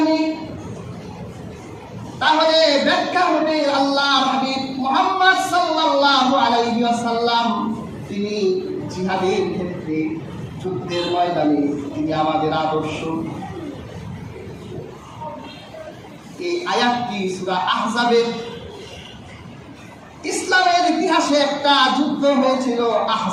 নিই, তাহলে ব্যাখ্যা হবে আল্লাহর হাবিব মুহাম্মদ সাল্লাল্লাহু আলাইহি ওয়াসাল্লাম তিনি জিহাদের ক্ষেত্রে, যুদ্ধের ময়দানে তিনি আমাদের আদর্শ। এই আয়াতটি সূরা আহজাবের, ইসলামের ইতিহাসে একটা যুদ্ধ হয়েছিল,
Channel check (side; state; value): both; identical; correlation 1.00